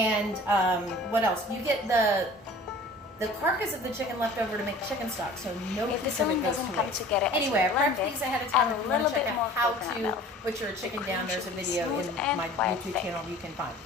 what else? You get the carcass of the chicken left over to make chicken stock, so no If the piece of it filling goes doesn't to come waste. together as you Anyway, I blend prepped it, these ahead of time. add If a you want little to check bit out more how coconut to milk. butcher a chicken The down, cream there's a should be video smooth in and my quite YouTube thick. channel you can find.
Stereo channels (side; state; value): both; normal; correlation 0.46